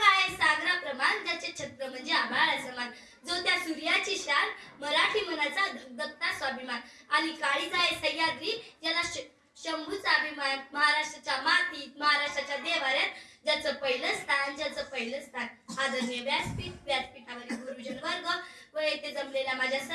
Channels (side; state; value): both; identical; correlation 1.00